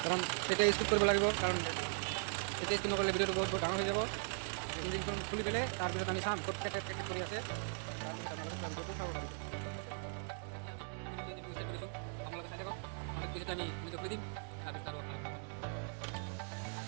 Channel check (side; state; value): left; silent; 52 dB below the other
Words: কাৰণ তেতিয়া স্কিপ কৰিব লাগিব কাৰণ তেতিয়া স্কিপ নকৰিলে ভিডিঅ'টো বহুত ডাঙৰ হৈ যাব ইঞ্জিনখন খুলি পেলাই তাৰপিছত আমি চাম ক'ত কেট কৰি আছে তাৰপিছত আপোনালোকে ভিডিঅ'টো চাব পাৰিব আপোনালোকে চাই থাকক তেতিয়া আমি ভিডিঅ' খুলি দিম তাৰপিছত আৰু